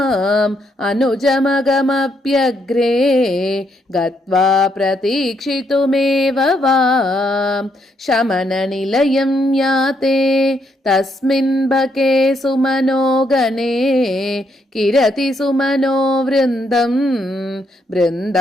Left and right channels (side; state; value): both; normal; correlation 0.75